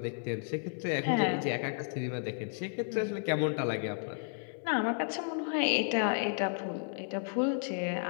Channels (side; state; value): right; silent; 56 dB below the other